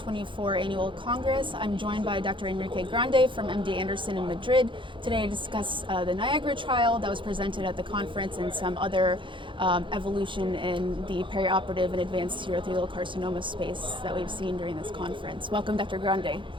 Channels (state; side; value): late; left; 0.24 ms